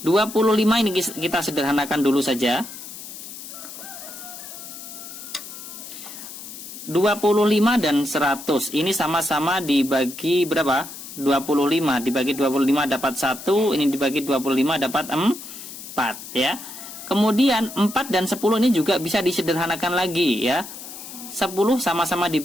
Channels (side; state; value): left; noise; hiss, 12 dB below the sound